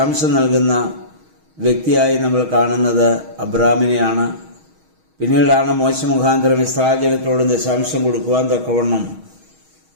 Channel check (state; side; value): late; left; 6.3 ms